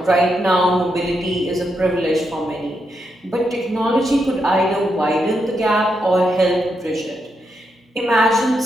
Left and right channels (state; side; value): normal; both; correlation 0.82